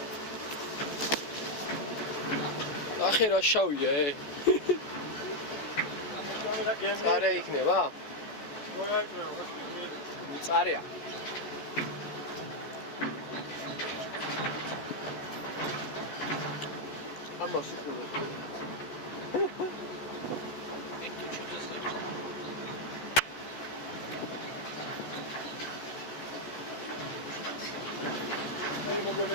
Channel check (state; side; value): late; right; 14 ms